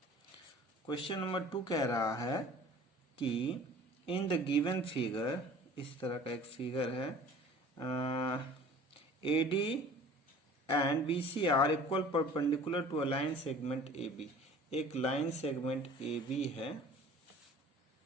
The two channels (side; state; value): both; normal; correlation 0.47